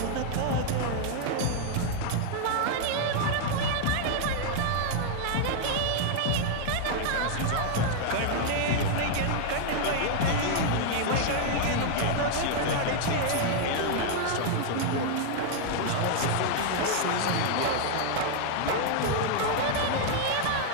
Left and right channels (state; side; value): different; both; correlation -0.01